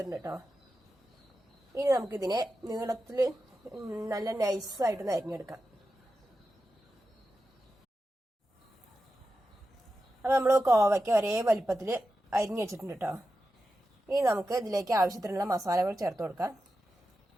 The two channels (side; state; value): both; normal; correlation 0.91